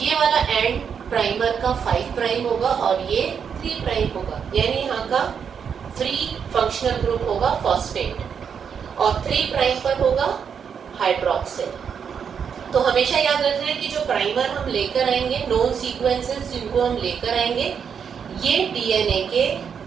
वाला एंड प्राइमर का 5 प्राइम होगा और ये 3 प्राइम होगा, यानी यहाँ का फ्री फंक्शनल ग्रुप होगा फॉस्फेट और 3 प्राइम पर होगा हाइड्रोक्सिल। तो हमेशा याद रखना है कि जो प्राइमर हम लेकर आएंगे, नोन सीक्वेंसेस जिनको हम लेकर आएंगे, ये डीएनए के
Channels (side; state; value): left; quieter; 7.1 dB